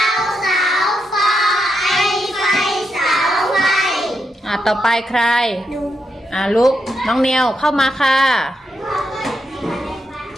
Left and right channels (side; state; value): both; normal; correlation 0.83